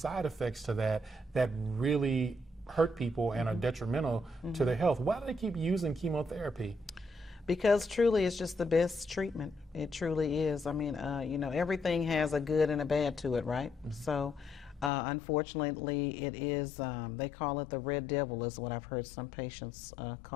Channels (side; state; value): right; drops out; at 14.9 s